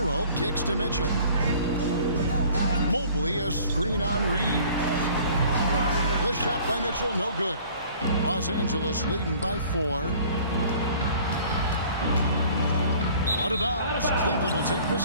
kicks to Mitchell. Mobley, a screen on Reeves. The shot by Mitchell, no good. Los Angeles leading by 4. Out of bounds. Cleveland will take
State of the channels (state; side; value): inverted; both; correlation -0.51